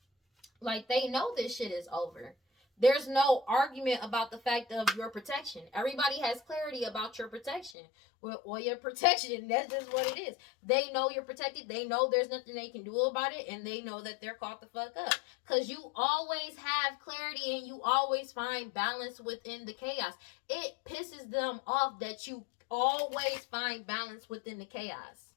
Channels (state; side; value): drops out; right; at 7.7 s